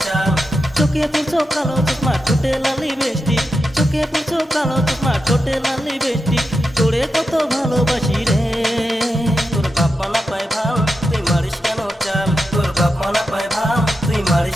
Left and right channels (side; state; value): both; normal; correlation 0.89